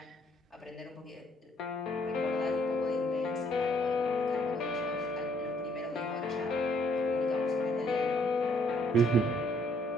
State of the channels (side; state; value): both; normal; correlation 0.68